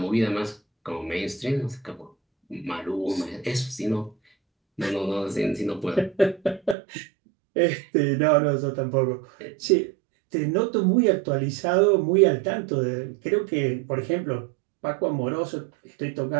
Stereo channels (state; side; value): drops out; left; at 6.8 s